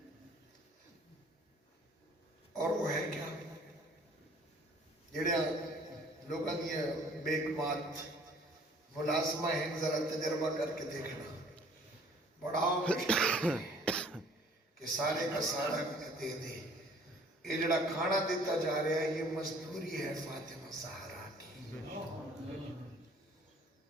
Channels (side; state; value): both; normal; correlation 0.55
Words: اور وہ ہے کیا جڑے لوگاں دی بیکمات ملازمہ ہیں ذرا تجربہ کر کے دیکھنا بڑا مشکل ہے کہ سارے کا سارا دے دے یہ جڑا کھانا دیتا جا رہا ہے یہ مزدوری ہے فاطمہ زہرا کی